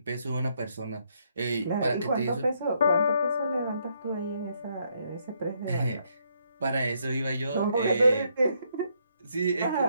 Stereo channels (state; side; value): inverted; both; correlation -0.73